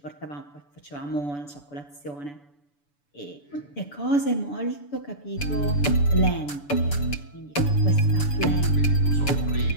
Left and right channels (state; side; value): late; right; 6.9 ms